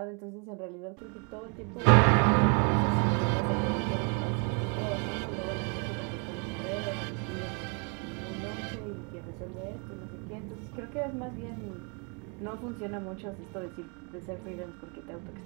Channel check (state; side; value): quieter; left; 37.5 dB